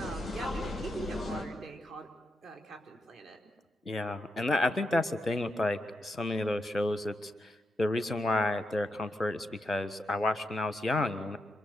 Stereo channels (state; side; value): normal; both; correlation 0.85